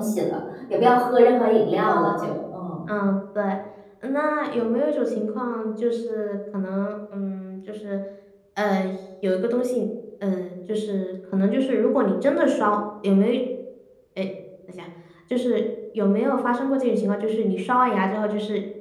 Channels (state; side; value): identical; both; correlation 1.00